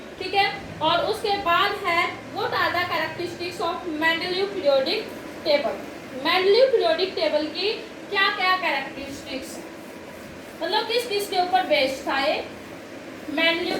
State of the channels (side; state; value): both; identical; correlation 1.00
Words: ठीक है, और उसके बाद है what are the characteristics of Mendeleev periodic table. Mendeleev periodic table की क्या क्या कैरेक्टरिस्टिक्स, मतलब किस किस के ऊपर बेस्ड था ये मेंडेलीव